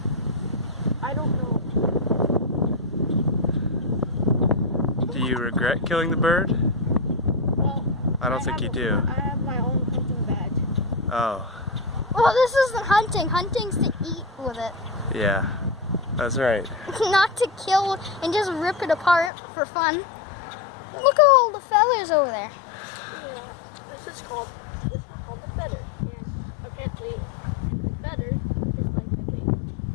I don't know. Do you regret killing the bird? Well, I don't think you do. I have my own hunting badge. Oh, Well, this isn't hunting. Hunting's to eat with it. yeah. That's right. Not to kill and just rip it apart for fun. Look at all the feathers over there. Yeah, this is called the feather. And apparently, the feather is like the thing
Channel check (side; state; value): right; drops out; at 19.3 s